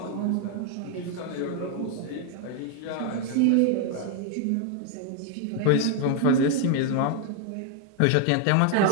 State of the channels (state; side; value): different; both; correlation 0.00